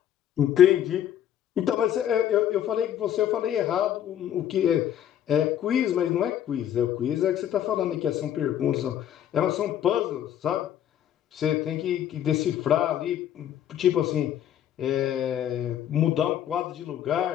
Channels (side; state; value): right; quieter; 10.7 dB